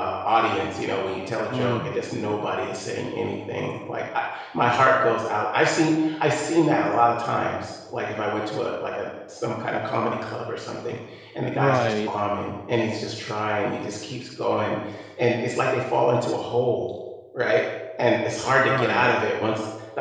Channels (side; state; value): both; identical; correlation 1.00